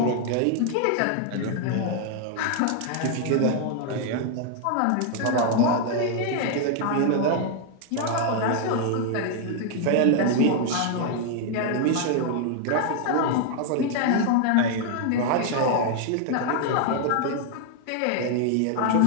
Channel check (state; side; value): different; both; correlation 0.00